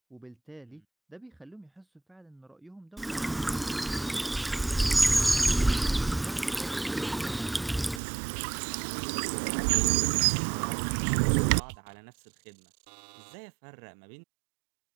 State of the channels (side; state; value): left; drops out; at 8.0 s